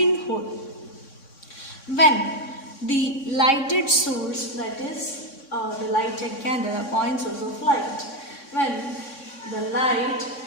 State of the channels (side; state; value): right; late; 3.6 ms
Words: When the lighted source, that is the lighted candle, a point source of light, when the light